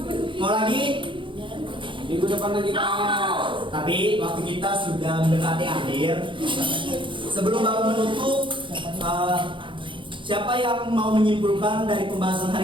Mau lagi? Minggu depan lagi Pak. Tapi waktu kita sudah mendekati akhir. Sebelum Bapak menutup, siapa yang mau menyimpulkan dari pembahasan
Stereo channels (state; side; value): late; left; 0.24 ms